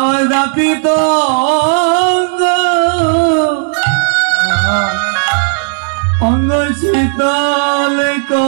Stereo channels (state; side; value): silent; left; digital silence